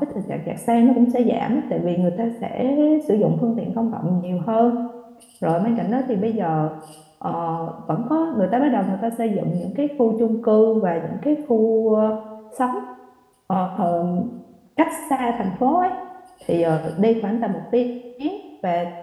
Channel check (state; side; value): identical; both; correlation 1.00